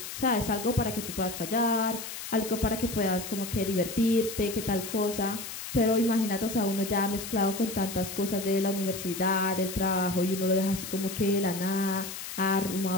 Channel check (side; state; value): left; noise; hiss, 8 dB below the sound